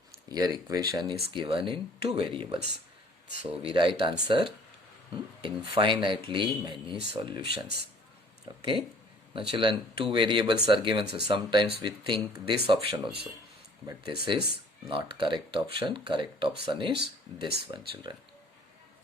Here equation is given in 2 variables. So we write answer infinitely many solutions. Okay. Now, children, 2 variables are given. So sometimes we think this option also. But this is not correct option. Correct option is this one, children.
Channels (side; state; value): both; normal; correlation 0.54